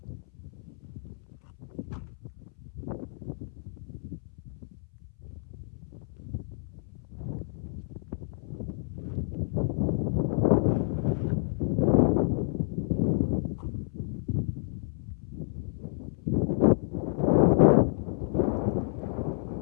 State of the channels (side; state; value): right; silent; 58 dB below the other